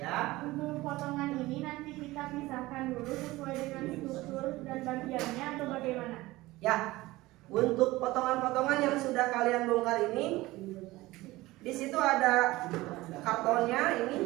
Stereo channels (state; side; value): quieter; left; 19.0 dB